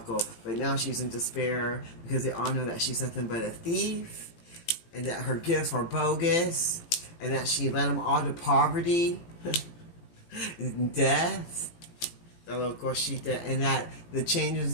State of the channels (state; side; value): late; right; 18 ms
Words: now she's in despair because they all know that she's nothing but a thief, and that her gifts are bogus, and that she led them all to poverty and death. And that the changes